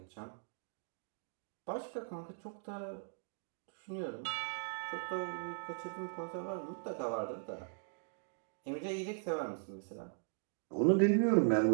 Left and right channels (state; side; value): silent; left; digital silence